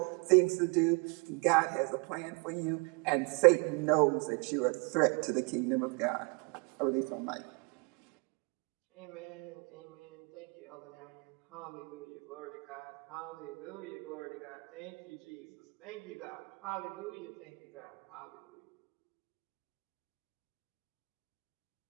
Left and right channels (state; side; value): quieter; left; 32.4 dB